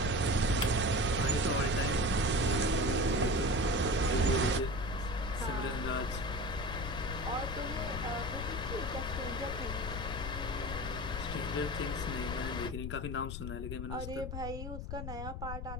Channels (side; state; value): left; noise; rumble, 6 dB below the sound